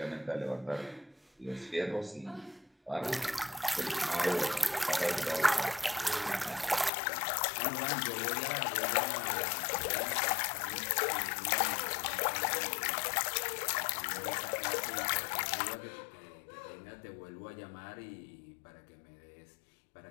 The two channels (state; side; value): drops out; right; at 6.9 s